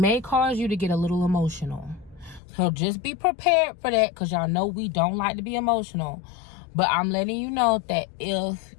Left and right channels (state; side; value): drops out; right; at 2.4 s